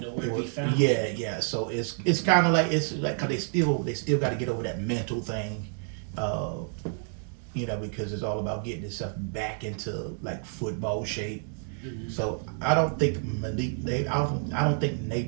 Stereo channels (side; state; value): left; silent; 57 dB below the other